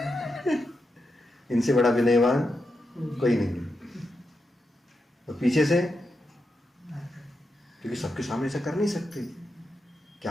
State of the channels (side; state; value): both; normal; correlation 0.86